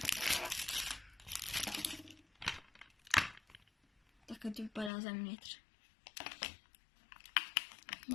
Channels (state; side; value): drops out; right; at 4.9 s